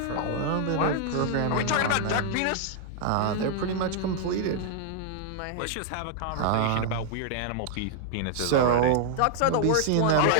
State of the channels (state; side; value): different; both; correlation -0.01